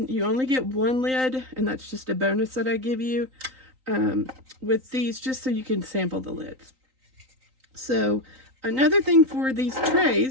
You only get one lid, and that's just a bonus that I give you with these, just so you can sample the lids. So another thing for these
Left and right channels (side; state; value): left; late; 3.9 ms